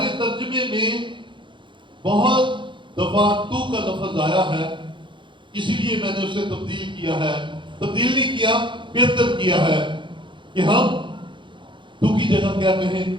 ترجمے میں بہت دفعہ تو کا لفظ آیا ہے، اسی لیے میں نے اسے تبدیل کیا ہے، تبدیل نہیں کیا، بہتر کیا ہے کہ ہم تو کی جگہ کیا کہیں،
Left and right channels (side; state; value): left; late; 0.23 ms